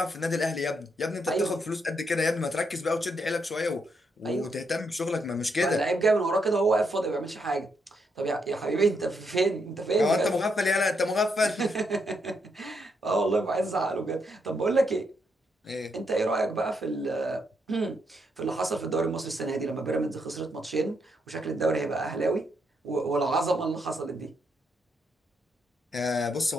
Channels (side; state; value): both; normal; correlation 0.78